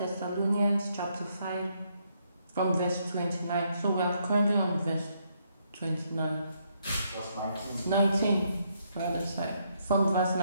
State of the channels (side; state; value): both; inverted; correlation -0.74